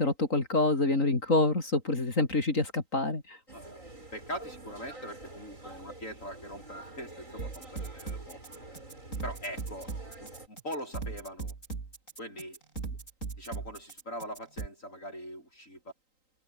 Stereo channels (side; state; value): right; late; 3.9 ms